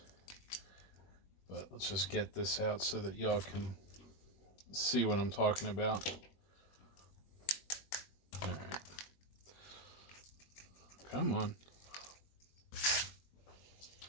But let's just get this out so that y'all can see what I'm talking about. All right. Come on.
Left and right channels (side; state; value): right; late; 21 ms